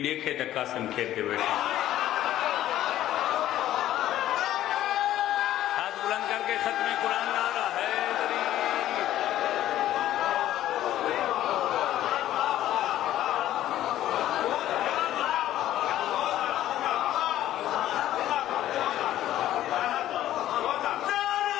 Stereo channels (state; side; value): quieter; right; 13.1 dB